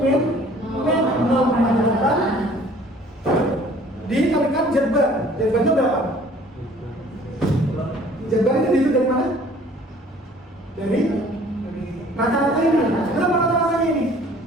min 0,8 dikalikan Z bar. Z barnya berapa? Z bar ini dihitung dari mana? Dari rata-rata ini. Berapa rata-ratanya ini?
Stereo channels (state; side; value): normal; both; correlation 0.53